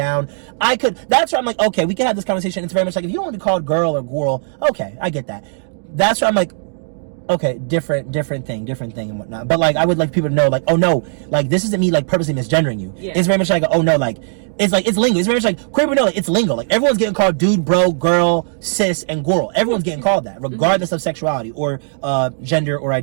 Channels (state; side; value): silent; left; digital silence